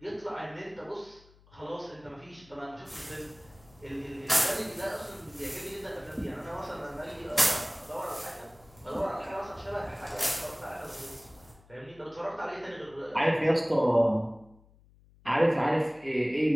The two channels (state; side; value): noise; left; hum, 27 dB below the sound